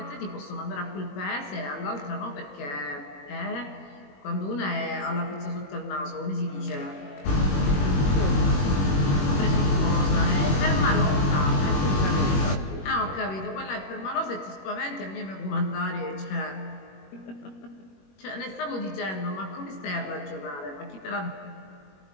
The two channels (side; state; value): right; late; 21 ms